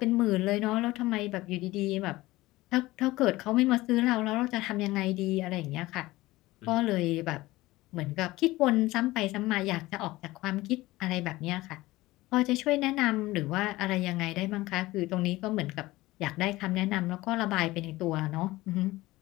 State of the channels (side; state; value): right; quieter; 18.7 dB